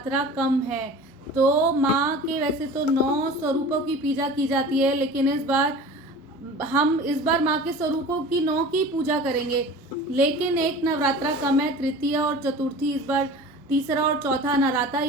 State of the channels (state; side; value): normal; both; correlation 0.39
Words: कम है तो माँ के वैसे तो 9 स्वरूपों की पूजा की जाती है, लेकिन इस बार माँ के स्वरूपों की 9 की पूजा करेंगे, लेकिन एक नवरात्रा कम है। तृतीय और चतुर्थी इस बार तीसरा और चौथा नवरात्रा